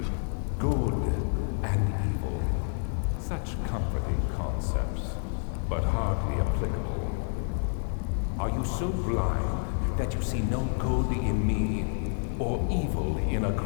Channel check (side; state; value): right; silent; 58 dB below the other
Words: Good and evil. Such comforting concepts, but hardly applicable. Are you so blind that you see no good in me or evil in